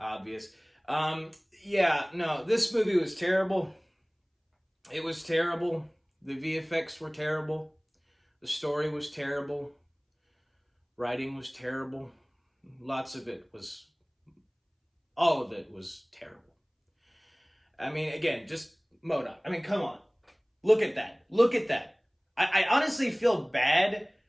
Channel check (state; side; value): identical; both; correlation 1.00